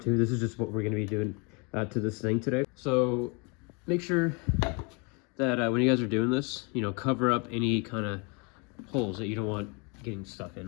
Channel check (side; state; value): right; quieter; 32.1 dB